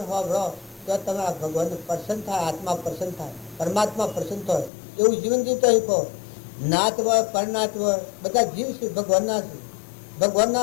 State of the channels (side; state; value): right; drops out; at 4.7 s